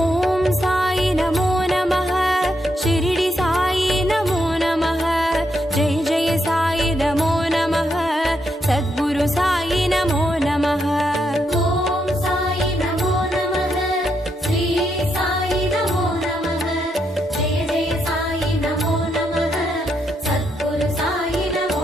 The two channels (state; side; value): normal; both; correlation 0.79